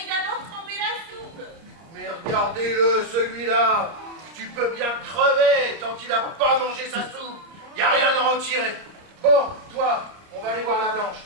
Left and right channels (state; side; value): late; left; 30 ms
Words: d'abord tremper la soupe. Mais regardez-le, celui-là. Tu peux bien crever tant qu'il n'a pas mangé sa soupe. Il n'y a rien à en tirer. Bon, toi, on va aller voir la Blanche.